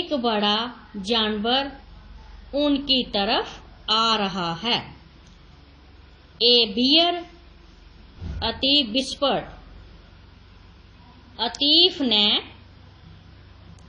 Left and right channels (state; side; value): identical; both; correlation 1.00